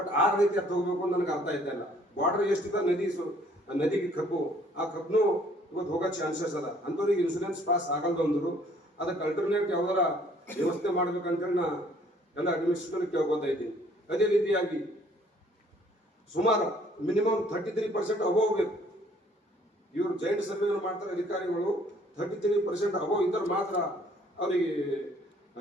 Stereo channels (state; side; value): normal; both; correlation 0.60